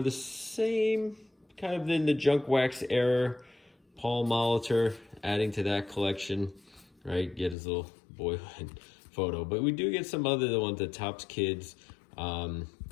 the same, kind of in the junk wax era. Paul Molitor, adding to that collection, right? Get his little boyhood photo. But we do get some other ones, the Topps Kids, and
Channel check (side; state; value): right; drops out; at 7.6 s